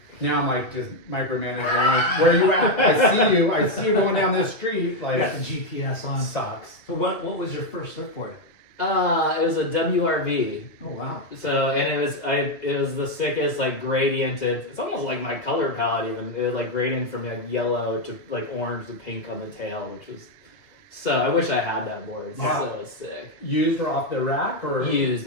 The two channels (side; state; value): right; late; 2.3 ms